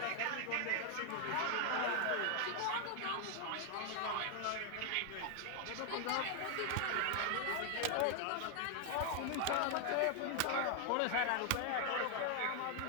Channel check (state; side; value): different; both; correlation 0.00